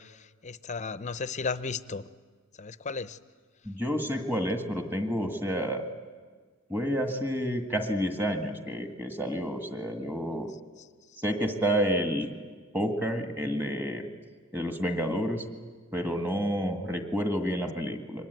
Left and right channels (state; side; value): normal; both; correlation 0.60